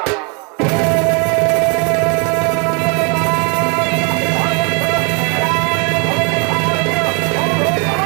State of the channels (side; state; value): left; quieter; 34.1 dB